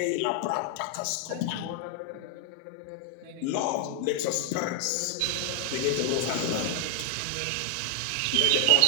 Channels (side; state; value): both; different; correlation 0.00